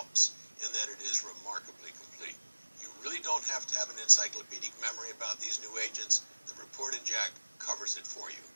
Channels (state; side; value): inverted; both; correlation -1.00